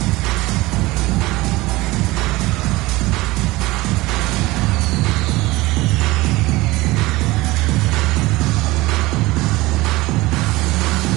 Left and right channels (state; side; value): quieter; left; 20.3 dB